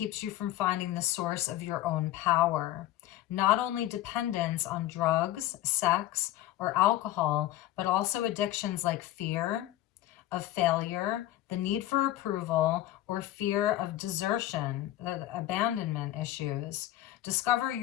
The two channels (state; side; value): quieter; right; 14.5 dB